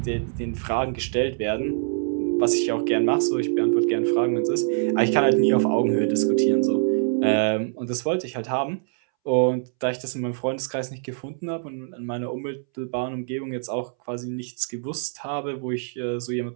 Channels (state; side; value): silent; left; 62 dB below the other